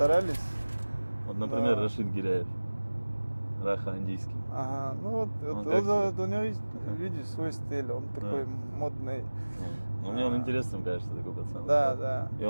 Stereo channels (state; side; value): inverted; both; correlation -1.00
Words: Вот, например, Да. Рашид Гиряев, Раха Андийский. Ага, ну вот, Он вот как у него есть, видишь, свой стиль, он такой модный. Ну, мне он интересным кажется, такой пацан. Да, да. И